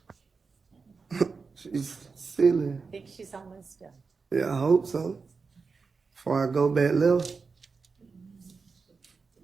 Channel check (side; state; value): left; quieter; 4.8 dB